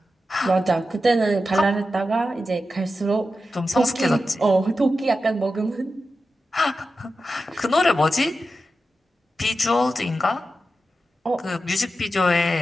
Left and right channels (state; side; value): normal; both; correlation 0.91